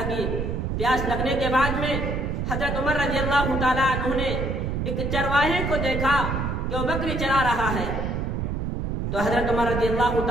پیاس لگنے کے بعد میں حضرت عمر رضی اللہ تعالیٰ عنہ نے ایک چرواہے کو دیکھا کہ وہ بکری چرا رہا ہے، تو حضرت عمر رضی اللہ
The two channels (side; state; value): right; noise; rumble, 2 dB below the sound